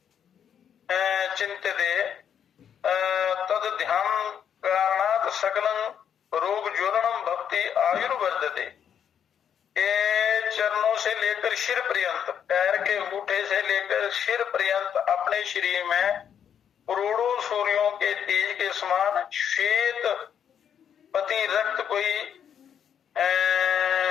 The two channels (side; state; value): right; quieter; 8.5 dB